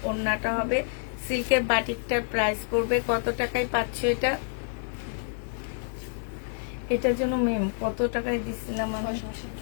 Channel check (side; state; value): right; silent; 59 dB below the other